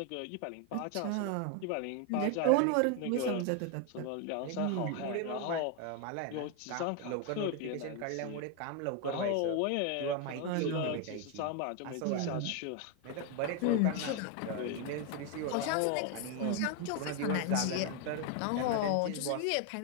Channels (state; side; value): different; both; correlation 0.01